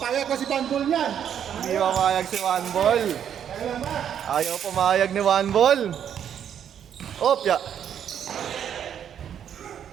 ko si Bandol niyan. Hindi mamayag si Wambol. Kaya lang ba? Ayaw pumayag ni Wambol. Opya.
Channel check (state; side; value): quieter; left; 9.0 dB